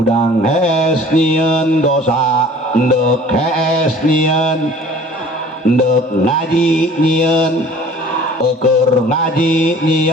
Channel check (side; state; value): both; normal; correlation 0.48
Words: hees nyieun dosa ndek hees nyieun ndek ngaji nyieun eukeur ngaji